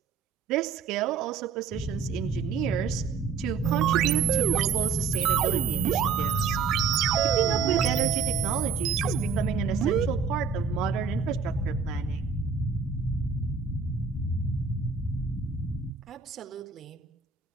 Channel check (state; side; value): quieter; left; 5.6 dB